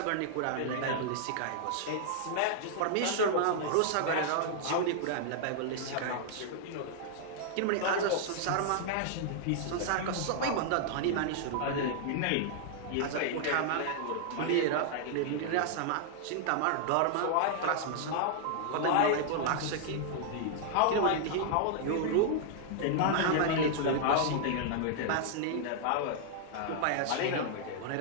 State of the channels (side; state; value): both; different; correlation -0.01